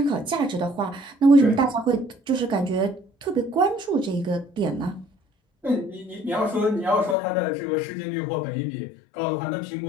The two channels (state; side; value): drops out; right; at 7.2 s